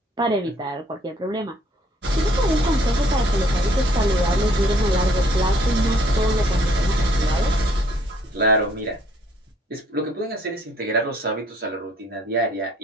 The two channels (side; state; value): both; normal; correlation 0.63